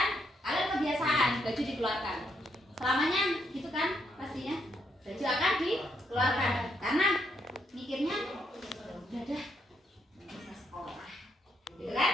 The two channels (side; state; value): both; normal; correlation 0.76